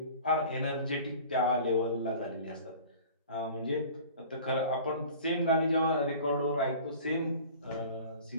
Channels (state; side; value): inverted; both; correlation -0.43